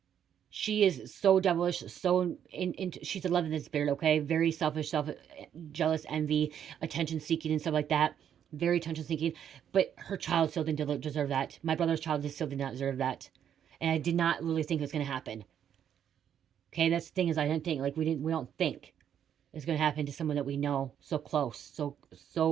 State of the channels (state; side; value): quieter; left; 9.2 dB